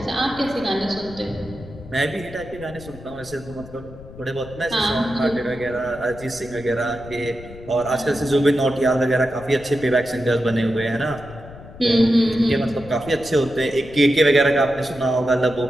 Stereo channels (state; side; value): noise; left; rumble, 17 dB below the sound